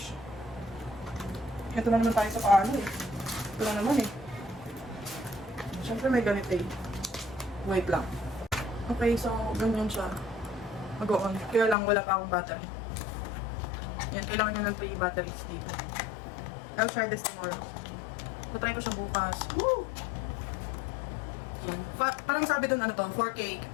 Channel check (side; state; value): right; drops out; at 11.8 s